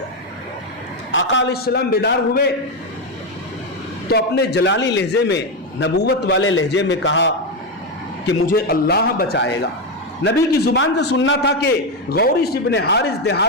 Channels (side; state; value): both; normal; correlation 0.09